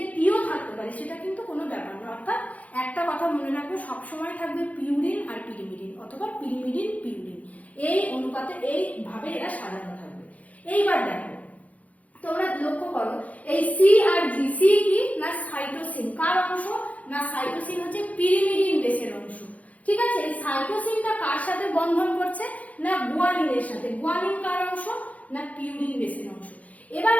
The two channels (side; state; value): right; late; 0.070 ms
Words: টিও থাকতে পারে, সেটা কিন্তু কোনো ব্যাপার না। অর্থাৎ একটা কথা মনে রাখবে সবসময় থাকবে পিউরিন আর পিরিমিডিন অথবা পিরিমিডিন পিউরিন, এই অনুপাতে এইভাবে এরা সাজানো থাকবে। এইবার দেখো তোমরা লক্ষ্য করো এই সি আর জি, সি কি না সাইটোসিন কার অংশ না সাইটোসিন হচ্ছে পিরিমিডিন বেসের অংশ। ঠিক আছে, এই সাইটোসিনটা কার সাথে বন্ধন করছে না গুয়ানিনের সাথে। গুয়ানিন কার অংশ না পিউরিন বেসের অংশ। এবার